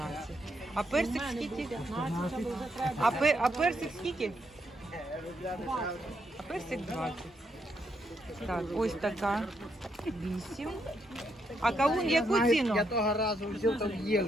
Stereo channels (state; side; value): normal; both; correlation 0.77